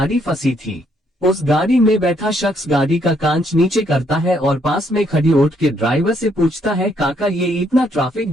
फंसी थी। उस गाड़ी में बैठा शख्स गाड़ी का कांच नीचे करता है और पास में खड़ी ऑटो के ड्राइवर से पूछता है, काका ये इतना ट्रैफिक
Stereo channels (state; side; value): normal; both; correlation 0.71